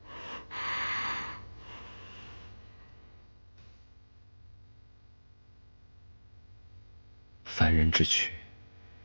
凡人之躯，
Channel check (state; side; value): inverted; both; correlation -1.00